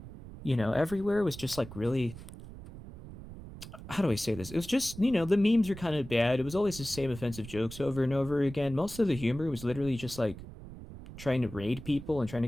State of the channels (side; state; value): right; noise; rumble, 14 dB below the sound